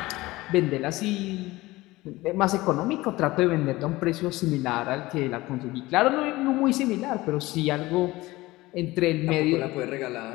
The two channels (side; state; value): right; quieter; 19.4 dB